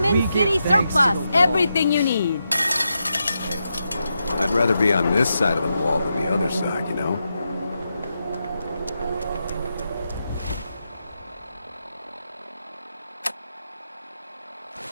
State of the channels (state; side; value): inverted; both; correlation -0.86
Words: City Surplus, everything you need. I'd rather be on this side of the wall than the other side, you know?